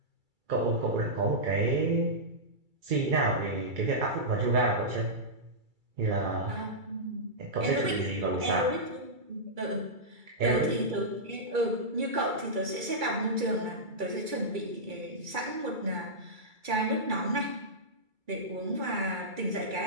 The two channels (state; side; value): late; left; 2.3 ms